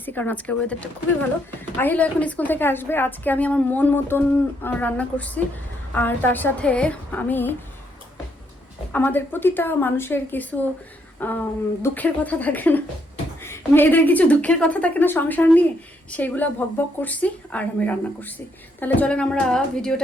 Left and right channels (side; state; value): both; normal; correlation 0.74